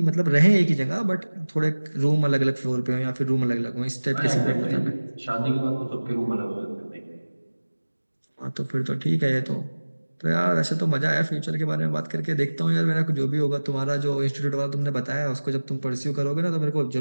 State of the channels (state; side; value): inverted; both; correlation -1.00